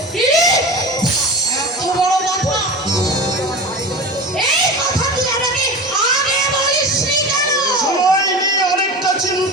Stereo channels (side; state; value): both; normal; correlation 0.30